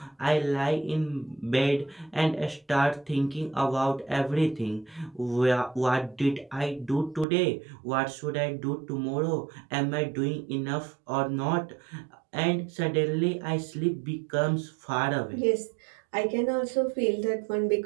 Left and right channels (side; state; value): left; drops out; at 7.2 s